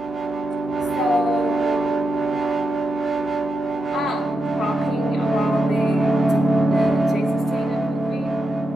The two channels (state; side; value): noise; right; hum, 29 dB below the sound